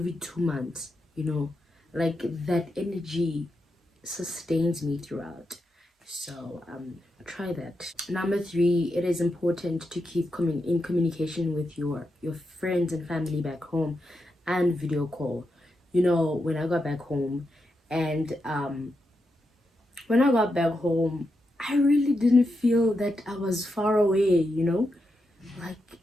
2 months, like that energy sustains me throughout. So try that. Number three, it is important to keep in communication with your friends and family back home, and video call. When I got back home, and when I got back home, I really didn't feel that I was far away. Like,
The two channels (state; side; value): normal; both; correlation 0.86